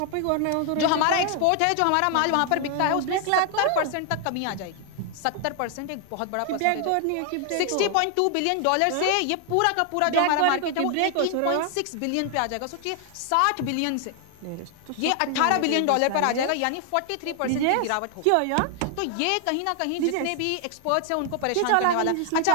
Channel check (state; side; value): different; both; correlation 0.00